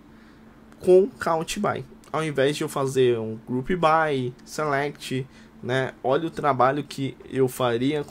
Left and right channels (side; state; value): both; identical; correlation 1.00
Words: com count by. Ao invés de eu fazer um group by, select, né, olha o trabalho que eu faria